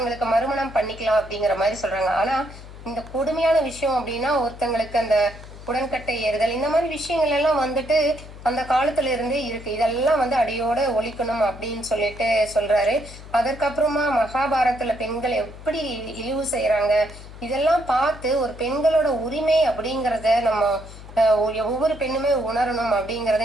மறுமணம் பண்ணிக்கலாம் அப்படிங்கிற மாதிரி சொல்றாங்க. ஆனா இந்த கொடுமையான விஷயம் அப்படின்னா ஒருத்தங்களுக்கு அந்த உடன்கட்டை ஏறுதல் இந்த மாதிரி விஷயங்கள் எல்லாம் அந்த காலத்துல இருந்தே இருக்கு. இதெல்லாம் அடியோட ஒழிக்கணும் அப்படின்னு சொல்றாரு. அதற்கப்புறமா மகாபாரதத்துல பெண்கள் எப்படி இழிவு செய்யறாங்க இதெல்லாம் பார்த்து ஒரு பெண்களோட உரிமை அப்படிங்கறத நம்ம ஒவ்வொரு பெண்ணுமே உணரணும் அப்படிங்கறத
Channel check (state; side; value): noise; left; hum, 16 dB below the sound